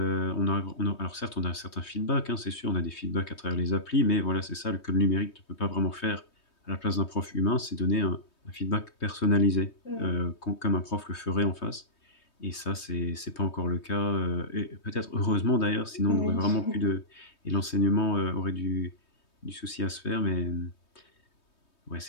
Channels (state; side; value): late; right; 3.2 ms